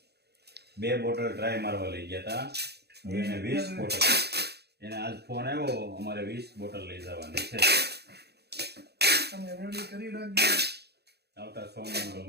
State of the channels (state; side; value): late; left; 0.48 ms